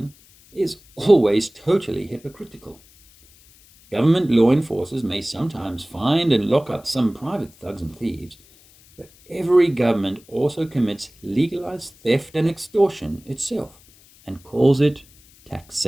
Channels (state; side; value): noise; left; hiss, 27 dB below the sound